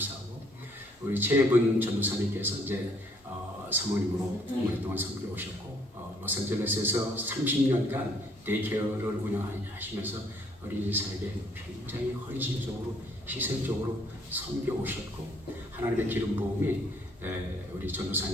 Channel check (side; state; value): both; normal; correlation 0.64